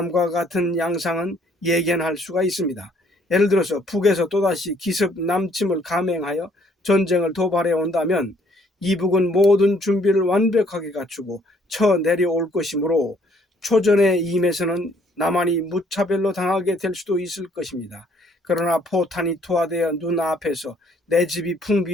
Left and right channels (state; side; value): normal; both; correlation 0.64